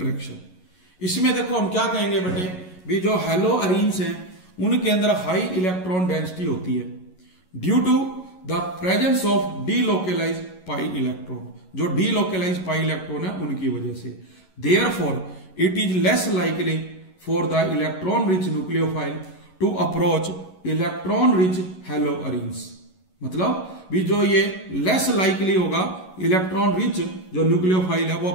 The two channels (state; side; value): late; right; 11 ms